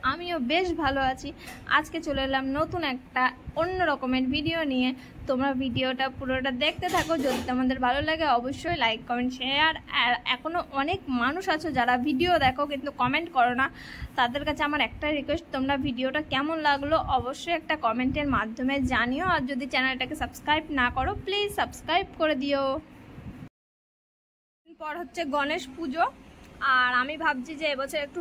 আমিও বেশ ভালো আছি। আজকে চলে এলাম নতুন একটা অন্য রকমের ভিডিও নিয়ে। তোমরা ভিডিওটা পুরোটা দেখতে থাকো। যদি তোমাদের ভালো লাগে অবশ্যই লাইক কমেন্ট শেয়ার। আর এখনও অনেক মানুষ আছো যারা ভিডিও দেখো কিন্তু কমেন্ট করো না। তাদের কাছে আমার একটা রিকোয়েস্ট, তোমরা ভিডিওটা কেমন লাগলো অবশ্যই একটা কমেন্টের মাধ্যমে জানিও। আর যদি চ্যানেলটাকে সাবস্ক্রাইব না করো প্লিজ সাবস্ক্রাইব করে দিও। পর হচ্ছে গণেশ পুজো, আর আমি ভাবছি যে এবছর একটু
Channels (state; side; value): identical; both; correlation 1.00